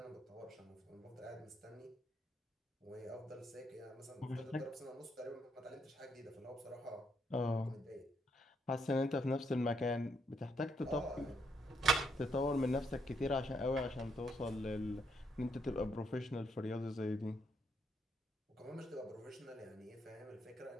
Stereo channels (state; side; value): normal; both; correlation 0.75